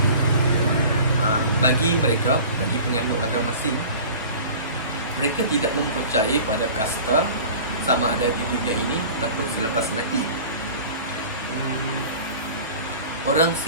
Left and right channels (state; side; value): inverted; both; correlation -0.41